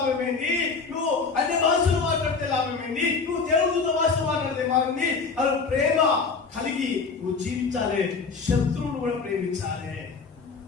నువ్వు అన్ని భాషలు మాట్లాడితే లాభమేంది, నువ్వు దేవుడితో భాష మాట్లాడితే మారింది. అది ప్రేమ కలిగి నువ్వు జీవించాలి. శత్రువును కూడా ప్రేమించాలి.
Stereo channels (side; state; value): right; quieter; 4.8 dB